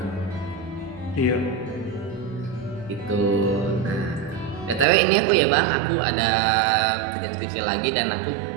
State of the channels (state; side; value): drops out; left; at 4.9 s